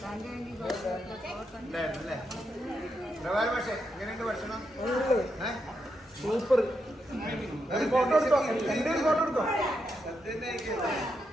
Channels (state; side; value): normal; both; correlation 0.83